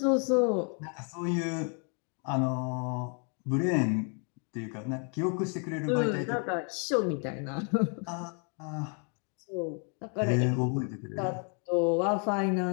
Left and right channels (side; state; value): right; quieter; 39.6 dB